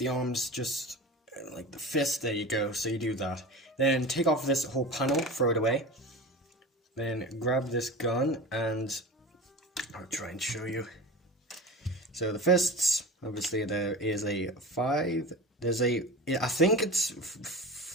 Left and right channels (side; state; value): both; normal; correlation 0.31